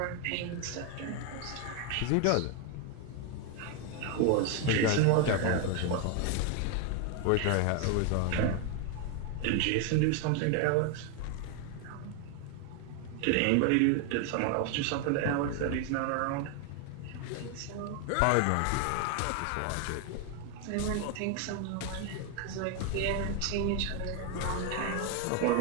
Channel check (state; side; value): different; both; correlation 0.01